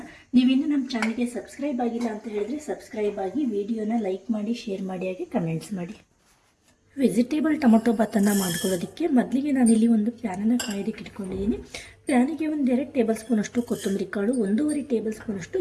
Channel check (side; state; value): both; identical; correlation 1.00